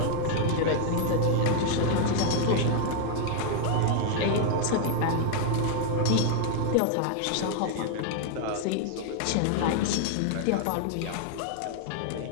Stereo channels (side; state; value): both; different; correlation 0.00